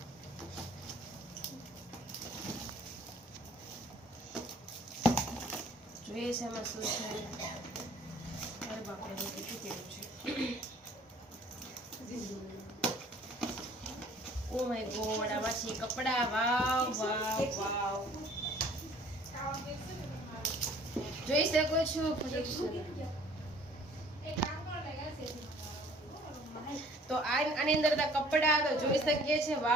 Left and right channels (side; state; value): both; normal; correlation 0.54